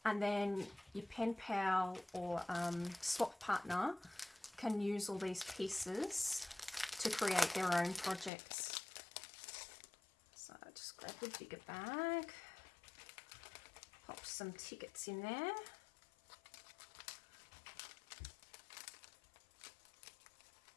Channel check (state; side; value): drops out; right; at 8.3 s